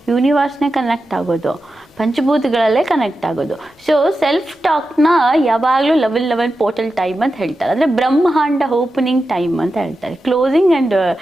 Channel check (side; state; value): both; normal; correlation 0.91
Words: ಯೂನಿವರ್ಸ್ನೇ ಕನೆಕ್ಟ್ ಆಗೋದು. ಪಂಚಭೂತಗಳಲ್ಲೇ ಕನೆಕ್ಟ್ ಆಗೋದು. ಸೊ ಸೆಲ್ಫ್ ಟಾಕ್ನ ಯಾವಾಗಲೂ ಲೆವೆಲ್ ಪೋರ್ಟಲ್ ಟೈಮ್ ಅಂತ ಹೇಳ್ತಾರೆ. ಅಂದರೆ ಬ್ರಹ್ಮಾಂಡ ಓಪನಿಂಗ್ ಟೈಮ್ ಅಂತ ಹೇಳ್ತಾರೆ.